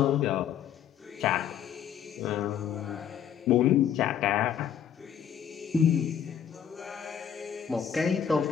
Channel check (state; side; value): quieter; right; 8.9 dB